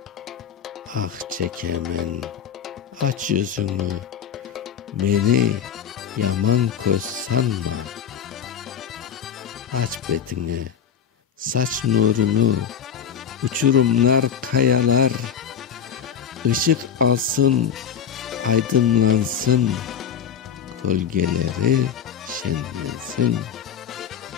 Ah çekemen, aç yüzünü, beni yaman köz sanma. Aç betini, saç nurunu, uçurumlar, kayalar, ışık alsın, aydınlansın, gölgeleri şenlensin.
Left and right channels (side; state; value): right; quieter; 7.8 dB